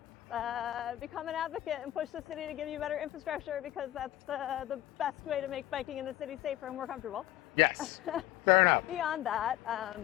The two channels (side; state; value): right; quieter; 14.5 dB